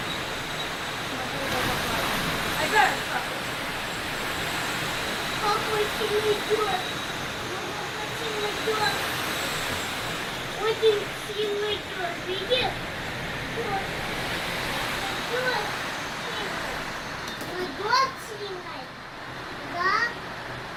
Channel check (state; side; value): identical; both; correlation 1.00